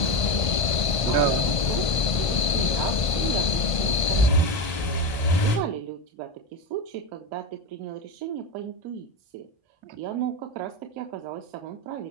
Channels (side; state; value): right; late; 1.5 ms